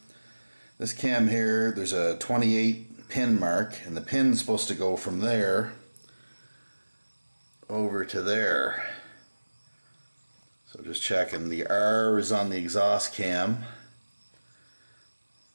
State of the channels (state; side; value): inverted; both; correlation -1.00